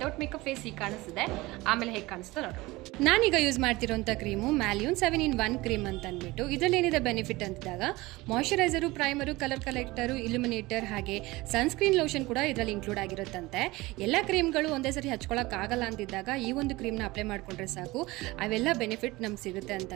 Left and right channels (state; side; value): quieter; left; 20.7 dB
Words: ಮೇಕಪ್ ಫೇಸ್ ಹೀಗೆ ಕಾಣಿಸ್ತಿದೆ, ಆಮೇಲೆ ಹೇಗೆ ಕಾಣಿಸ್ತಾ ನೋಡಿ. ನಾನೀಗ ಯೂಸ್ ಮಾಡ್ತಿರೋಂಥ ಕ್ರೀಮು ಮ್ಯಾಲ್ಯೂನ್ 7-in-1 ಕ್ರೀಮ್ ಅಂತ ಅಂದ್ಬಿಟ್ಟು. ಇದರಲ್ಲಿ ಏನಿದೆ ಬೆನಿಫಿಟ್ ಅಂತಿದ್ದಾಗ ಮಾಯ್ಶ್ಚರೈಸರು, ಪ್ರೈಮರು, ಕಲರ್ ಕಲೆಕ್ಟರು, ಇಲ್ಯುಮಿನೇಟರ್ ಹಾಗೆ ಸನ್ಸ್ಕ್ರೀನ್ ಲೋಷನ್ ಕೂಡ ಇದರಲ್ಲಿ ಇನ್ಕ್ಲೂಡ್ ಆಗಿರುತ್ತಂತೆ. ಎಲ್ಲ ಕ್ರೀಮ್ಗಳು ಒಂದೇ ಸರಿ ಹಚ್ಕೊಳ್ಳೋಕ್ಕಾಗಲ್ಲ ಅಂತಿದ್ದಾಗ ಈ ಒಂದು ಕ್ರೀಮ್ನ ಅಪ್ಲೈ ಮಾಡ್ಕೊಂಡ್ರೆ ಸಾಕು, ಅವೆಲ್ಲ ಬೆನಿಫಿಟ್ ನಮ್ಗೆ ಸಿಗುತ್ತೆ ಅಂತ